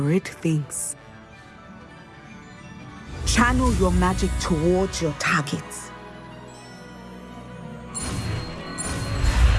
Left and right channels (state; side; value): identical; both; correlation 1.00